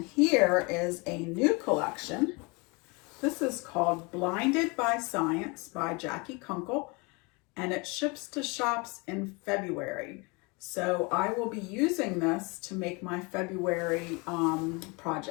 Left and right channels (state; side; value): quieter; right; 28.5 dB